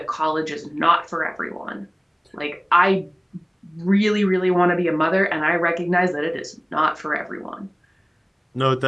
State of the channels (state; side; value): identical; both; correlation 1.00